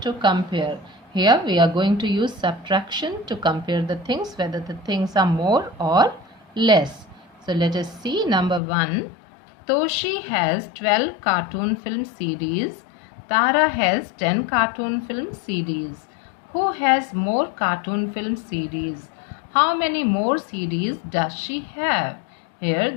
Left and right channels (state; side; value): drops out; right; at 8.6 s